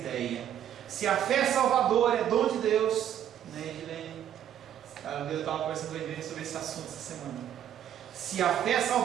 Se a fé salvadora é dom de Deus, né, Edilene? Eu estava conversando com a Edilene sobre esse assunto essa semana. Se a fé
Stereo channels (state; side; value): quieter; left; 10.4 dB